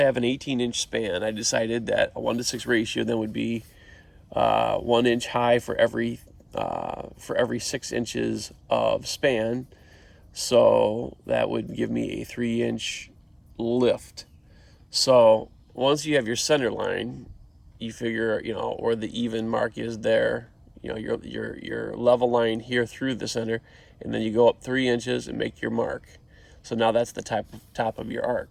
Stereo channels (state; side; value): identical; both; correlation 1.00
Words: have an 18-inch span, I decided that a 1-to-6 ratio then would be 1 inch high for every 6 inches of span. So that would give me a 3-inch lift. So once you have your center line, you figure, where the even mark is there, your level line here through the center, and then you go up 3 inches and make your mark. So now that's the top of your